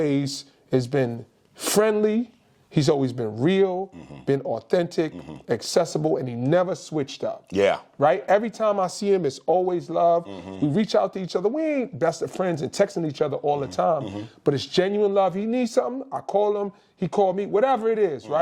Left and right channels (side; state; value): both; identical; correlation 1.00